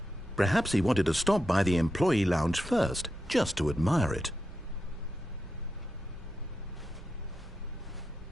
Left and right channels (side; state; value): right; noise; hum, 18 dB below the sound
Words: Perhaps he wanted to stop by the employee lounge first, just to admire it.